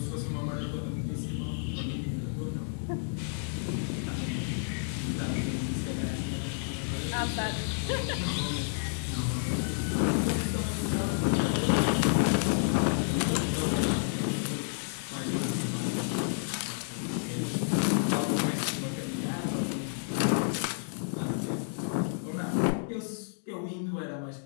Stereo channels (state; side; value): silent; right; 57 dB below the other